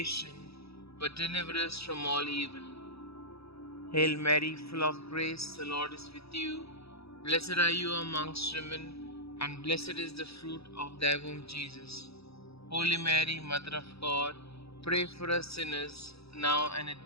but deliver us from all evil. Hail Mary, full of grace, the Lord is with you. Blessed are you amongst women, and blessed is the fruit of thy womb, Jesus. Holy Mary, Mother of God, pray for us sinners, now and at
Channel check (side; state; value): right; late; 0.78 ms